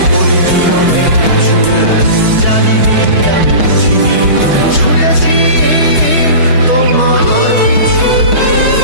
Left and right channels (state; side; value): late; left; 6.3 ms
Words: বলিনি অনেক কিছু, জানিনি আমি বুঝিনি তবু ছুটেছি তোমার পিছু।